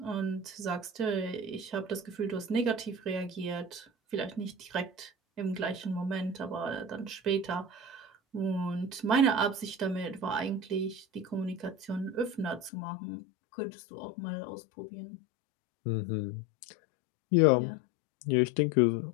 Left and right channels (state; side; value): drops out; right; at 12.7 s